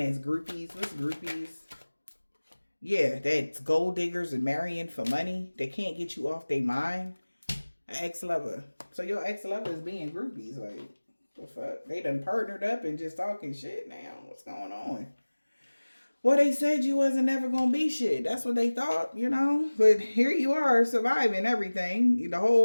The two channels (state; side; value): inverted; both; correlation -1.00